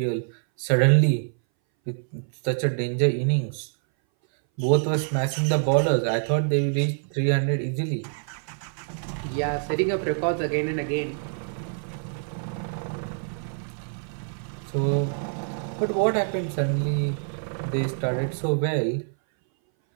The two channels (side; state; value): left; silent; 60 dB below the other